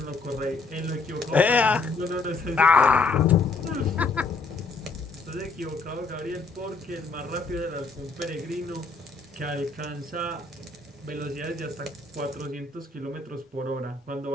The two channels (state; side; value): quieter; right; 3.9 dB